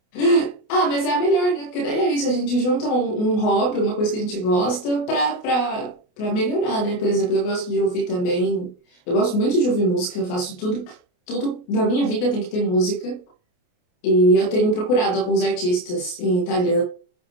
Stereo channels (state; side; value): late; right; 28 ms